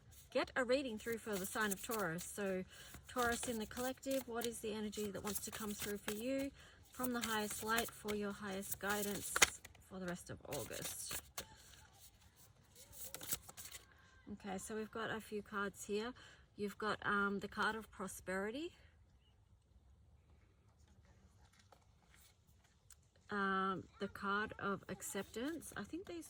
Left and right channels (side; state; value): both; identical; correlation 1.00